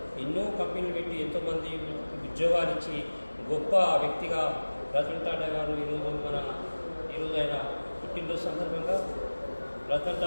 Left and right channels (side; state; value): both; inverted; correlation -1.00